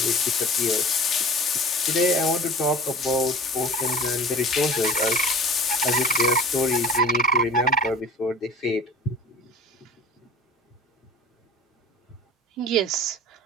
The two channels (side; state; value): both; normal; correlation 0.42